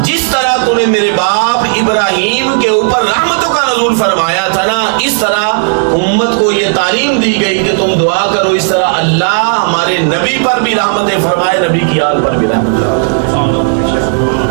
جس طرح تو نے میرے باپ ابراہیم کے اوپر رحمتوں کا نزول فرمایا تھا نا، اس طرح امت کو یہ تعلیم دی گئی کہ تم دعا کرو اس طرح اللہ ہمارے نبی پر بھی رحمتیں فرمائے، نبی کی آل پر بھی رحمتیں.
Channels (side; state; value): left; silent; digital silence